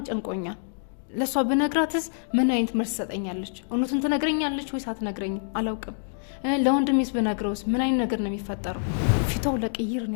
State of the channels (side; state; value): right; silent; digital silence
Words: ጨንቆኛል ለሷ በነግራትስ ምን አይነት መልስ ሰጠኛለች እውነቱን ትነግረኛለች ወይስ አትነግረኝም አላውቅም ለወንድሜስ በነግረውስ ምን አይነት ነገር ነው የሚፈጠረው ፊታው ለቅይር